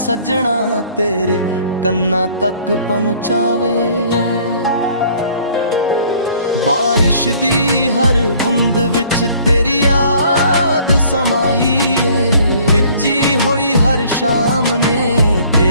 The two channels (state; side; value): inverted; both; correlation -0.56